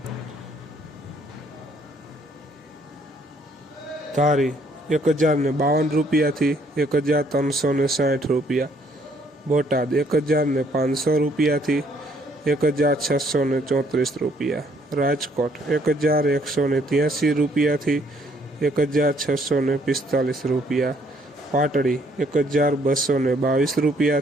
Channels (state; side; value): normal; both; correlation 0.66